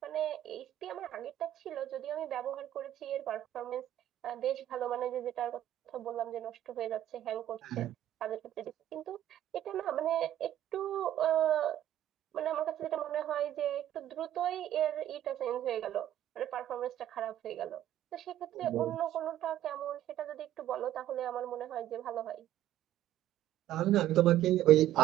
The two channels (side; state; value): left; quieter; 12.5 dB